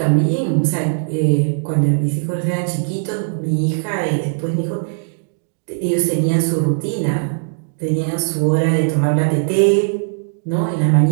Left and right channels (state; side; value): silent; left; digital silence